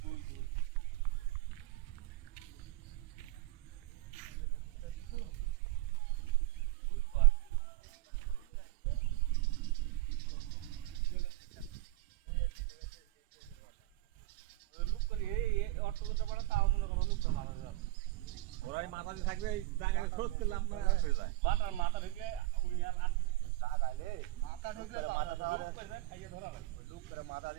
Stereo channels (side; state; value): left; quieter; 18.6 dB